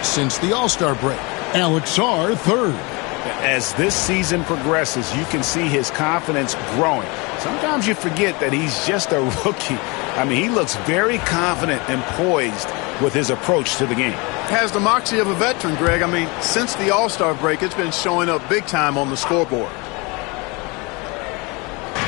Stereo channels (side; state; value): right; quieter; 27.6 dB